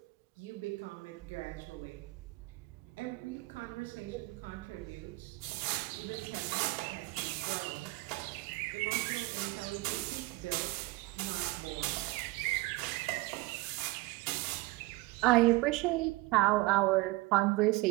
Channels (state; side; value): quieter; left; 21.7 dB